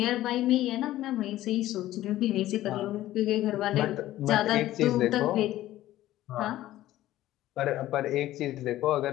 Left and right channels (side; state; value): right; quieter; 14.7 dB